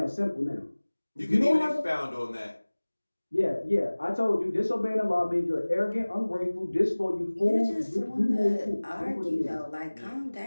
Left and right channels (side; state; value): both; inverted; correlation -1.00